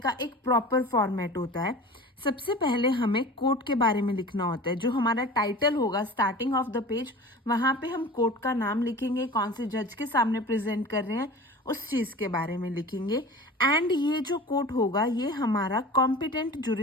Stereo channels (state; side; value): normal; both; correlation 0.37